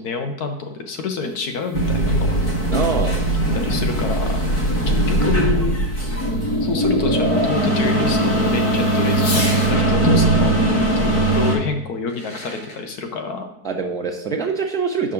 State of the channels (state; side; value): late; right; 4.6 ms